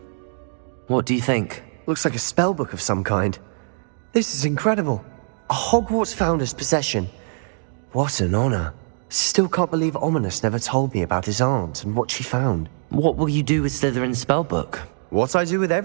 What do you think? Looks like a spellbook of some kind. This is incredible. A Hogwarts founder's possession. What an honor. Still can't believe Ominous never told me about his aunt and what she found. What will you do with Slytherin's spellbook? What I do with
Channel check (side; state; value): left; silent; digital silence